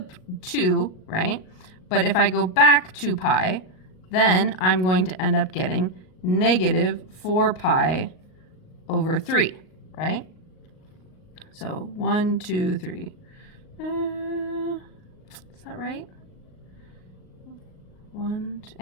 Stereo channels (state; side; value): late; right; 38 ms